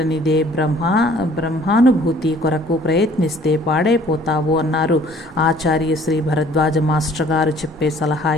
బ్రహ్మానుభూతి కొరకు ప్రయత్నిస్తే పాడైపోతావు అన్నారు. ఆచార్య శ్రీ భరద్వాజ మాస్టర్ గారు చెప్పే సలహా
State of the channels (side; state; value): both; normal; correlation 0.55